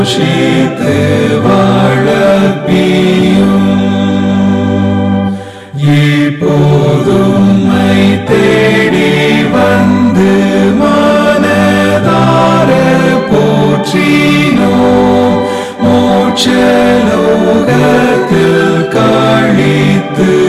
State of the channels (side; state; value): both; identical; correlation 1.00